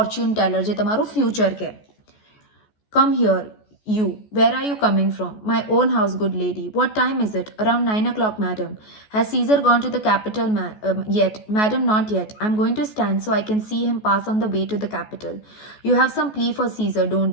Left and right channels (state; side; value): late; right; 14 ms